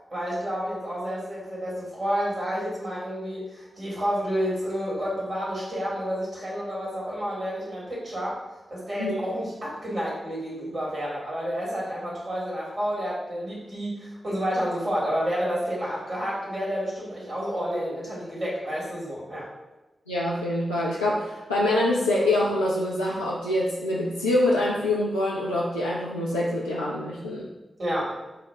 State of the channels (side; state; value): both; normal; correlation 0.82